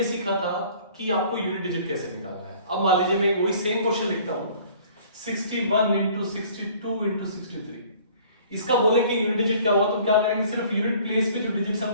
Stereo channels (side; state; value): both; inverted; correlation -0.53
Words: सीखा था कि आपको यूनिट डिजिट कैसे निकालना है। अब मान लीजिए मैं वही सेम क्वेश्चन लिखता हूँ 61 इंटू 62 इंटू 63। इसका बोले कि यूनिट डिजिट क्या होगा तो क्या करेंगे, सिर्फ यूनिट प्लेस पे जो डिजिट